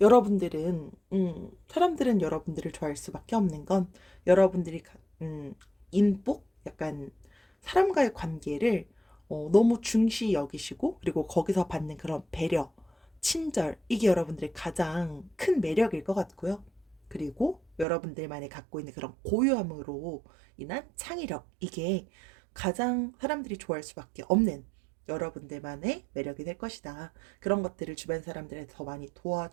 여러분들은, 사람들은 여러분들을 좋아할 수밖에 없는 건 여러분들이, 인복? 약간 사람과의 관계를 너무 중시 여기시고, 그리고 거기서 받는 그런 배려, 친절, 이게 여러분들의 가장 큰 매력일 것 같고요. 그리고 여러분들만이 갖고 있는 그런 고유함으로 인한 창의력, 이게 가장 사람들이 좋아할 수밖에 없는 여러분들만의 매력이 될 것이다. 그런 것들을 주변 사람들한테 더 많이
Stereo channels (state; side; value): drops out; left; at 17.9 s